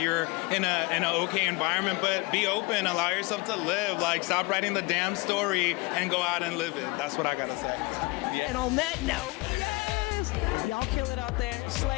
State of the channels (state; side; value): quieter; right; 25.8 dB